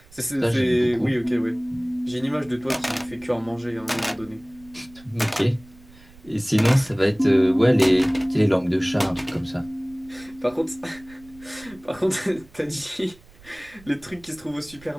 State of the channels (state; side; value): noise; right; rumble, 24 dB below the sound